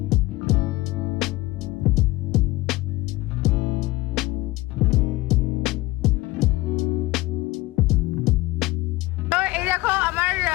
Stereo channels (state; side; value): quieter; right; 20.0 dB